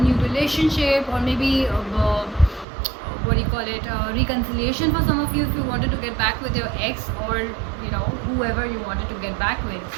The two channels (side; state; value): left; drops out; at 2.7 s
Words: relationship, or maybe what do you call it, reconciliation for some of you if you wanted to get back with your ex, or whoever you wanted to get back with.